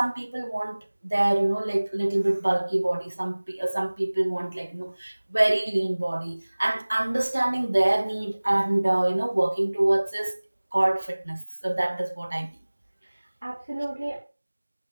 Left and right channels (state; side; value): inverted; both; correlation -1.00